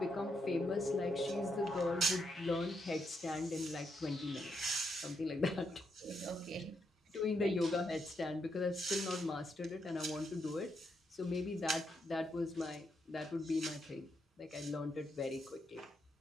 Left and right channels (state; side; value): normal; both; correlation 0.79